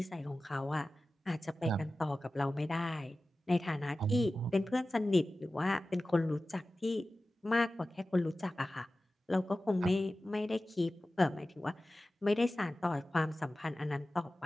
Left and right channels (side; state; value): both; normal; correlation 0.96